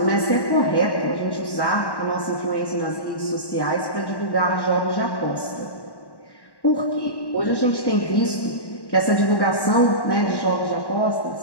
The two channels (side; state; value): right; late; 1.1 ms